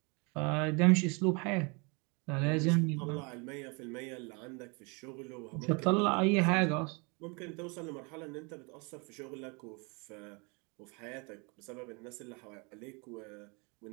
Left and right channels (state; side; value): quieter; left; 31.1 dB